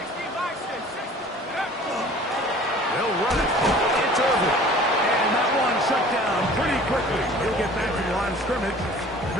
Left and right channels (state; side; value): normal; both; correlation 0.47